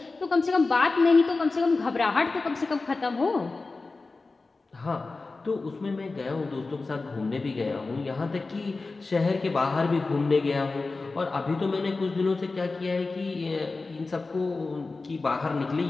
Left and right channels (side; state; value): right; quieter; 3.7 dB